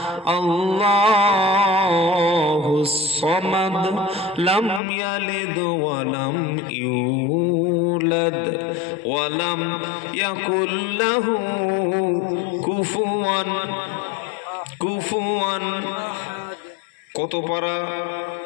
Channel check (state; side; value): drops out; right; at 4.8 s